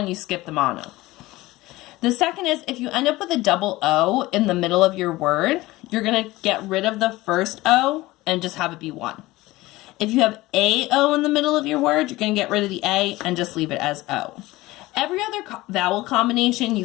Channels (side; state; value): right; quieter; 19.0 dB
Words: you skip the mono. The second is, if you end up with a double O in the middle of your word, you're going to get rid of the first O and just have it be 1. If you have AO in the middle of your word, you're going to get rid of the A and just leave it as O. Every other vowel combination you